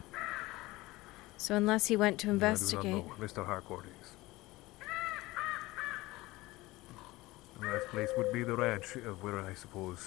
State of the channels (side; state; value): right; quieter; 19.8 dB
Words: So unless he went to investigate... I do not know where Mr. Harcourt is. The last place would be the ranch, of where I